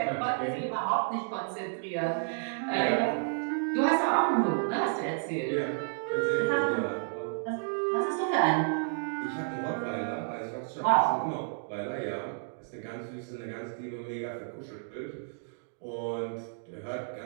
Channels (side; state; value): left; silent; digital silence